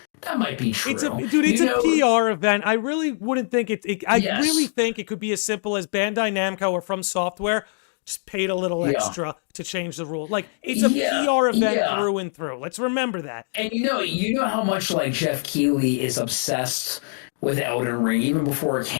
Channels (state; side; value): silent; right; 57 dB below the other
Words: That might be true. It's a PR event. I really wouldn't think really think it could be as simple as Bandai Namco or From Software just paid a little extra to change the rule. Like, it's a PR event through and through. Let's remember that. And you know how much like Jeff Keighley is obsessed with Elden Ring even before it